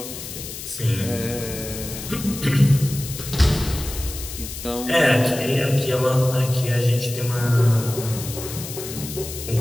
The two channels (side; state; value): left; noise; hiss, 10 dB below the sound